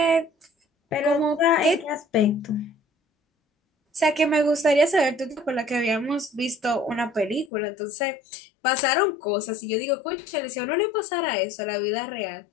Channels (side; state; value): right; drops out; at 7.5 s